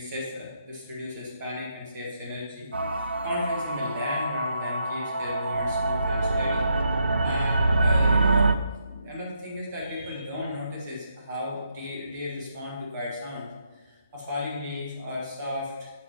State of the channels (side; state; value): both; inverted; correlation -0.77